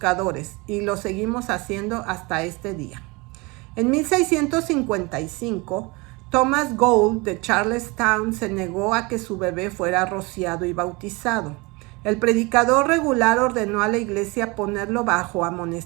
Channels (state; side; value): quieter; left; 26.0 dB